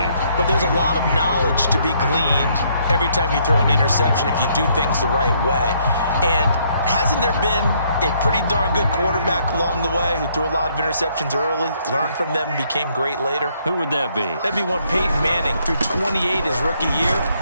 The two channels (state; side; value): inverted; both; correlation -0.69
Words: But there's a lot of knowledge to be gleaned every time you throw an interception if you do things the right way. And hasn't there been a pretty darn good quarterback along the way who threw a lot of interceptions early, learned from them, and became great later? Who would that be? That'd be one Peyton Manning. Threw 28 his rookie year.